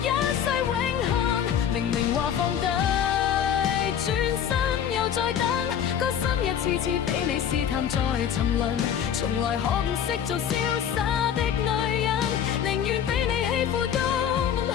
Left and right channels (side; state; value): right; quieter; 8.9 dB